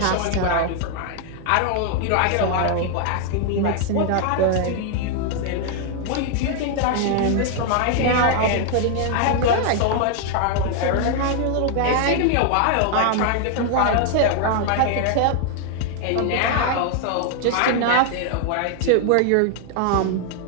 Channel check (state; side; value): different; both; correlation 0.00